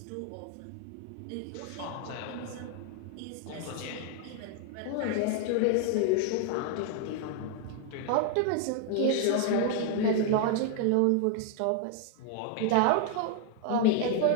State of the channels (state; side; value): different; both; correlation 0.00